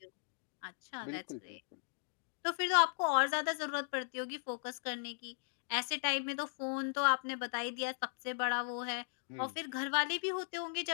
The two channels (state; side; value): silent; right; digital silence